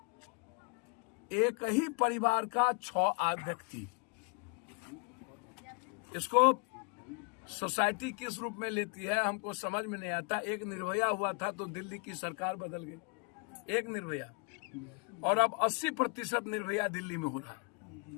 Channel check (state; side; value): quieter; right; 32.8 dB